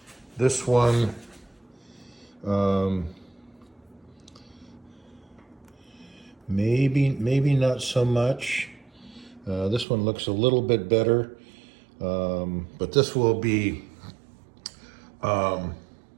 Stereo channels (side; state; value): left; drops out; at 9.9 s